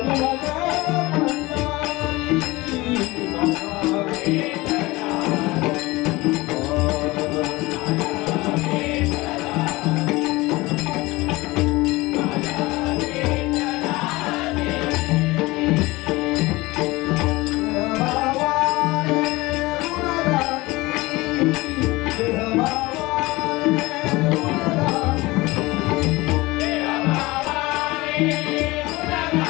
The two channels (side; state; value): right; quieter; 21.3 dB